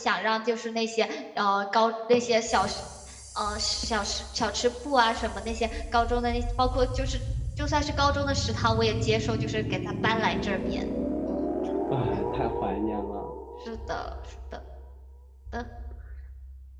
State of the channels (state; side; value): identical; both; correlation 1.00